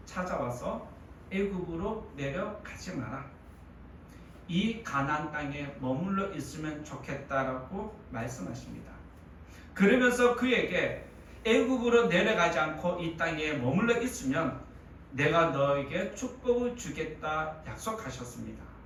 찾아와서 애굽으로 내려가지 마라, 이 가나안 땅에 머물러 있으면 좋겠다라고 말씀하십니다. 그러면서 그에게 애굽으로 내려가지 않고 이 땅에 머물러 있으면 내가 너에게 축복을 주겠다 약속하셨습니다.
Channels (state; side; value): identical; both; correlation 1.00